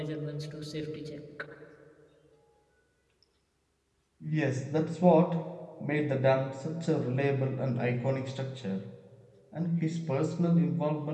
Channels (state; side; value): identical; both; correlation 1.00